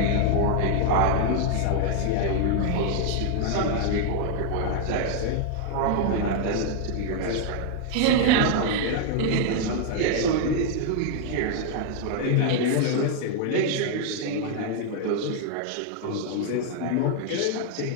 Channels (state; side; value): different; both; correlation 0.00